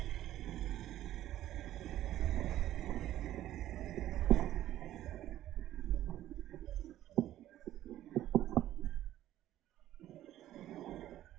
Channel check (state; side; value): quieter; left; 13.2 dB